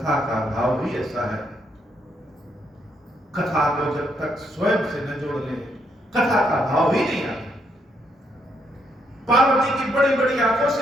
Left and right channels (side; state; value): both; normal; correlation 0.75